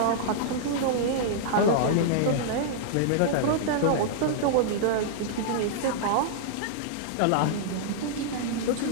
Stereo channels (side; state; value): both; different; correlation -0.01